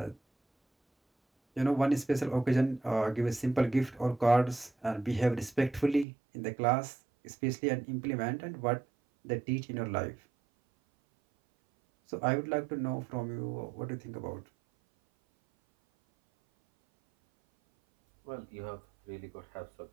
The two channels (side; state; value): left; drops out; at 6.1 s